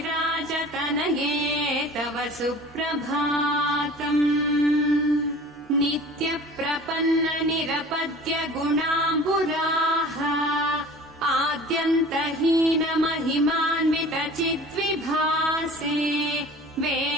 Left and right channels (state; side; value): normal; both; correlation 0.43